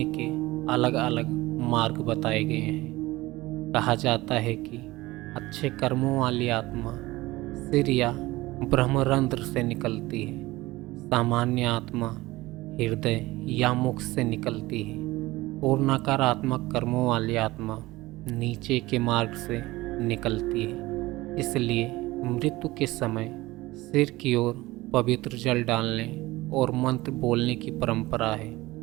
के अलग अलग मार्ग बताए गए हैं। कहा जाता है कि अच्छे कर्मों वाली आत्मा सिर या ब्रह्मरंध्र से निकलती है। सामान्य आत्मा हृदय या मुख से निकलती है और नकारात्मक कर्मों वाली आत्मा नीचे के मार्ग से निकलती है। इसलिए मृत्यु के समय सिर की ओर पवित्र जल डालने और मंत्र बोलने की परंपरा है।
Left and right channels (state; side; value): quieter; left; 19.3 dB